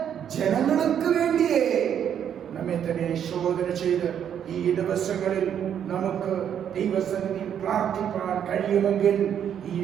ஜனங்களுக்கு வேண்டியே നമ്മെ തന്നെ ശോധന ചെയ്ത് ഈ ദിവസങ്ങളിൽ നമുക്ക് ദൈവസന്നിധിയിൽ പ്രാർത്ഥിപ്പാൻ കഴിയുമെങ്കിൽ ഈ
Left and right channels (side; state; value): left; quieter; 9.0 dB